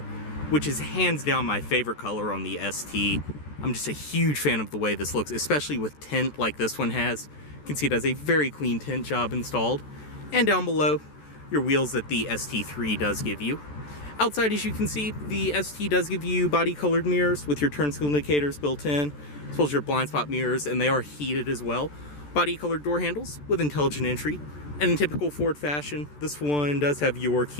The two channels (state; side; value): late; right; 14 ms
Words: which is hands down my favorite color on the ST. I'm just a huge fan of the way this looks, especially with tint like this one has. You can see it has a very clean tint job installed. And down below, your wheels that the ST3 does give you. Outside, as you can see, the ST does give you body colored mirrors with your turn signal indicators built in, as well as your blind spot mirrors, and they are heated as well. Body colored door handles with intelligent entry. And in typical Ford fashion, this one does have your